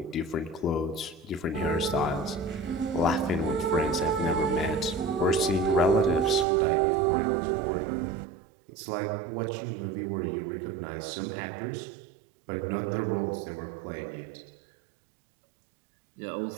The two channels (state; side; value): drops out; left; at 6.5 s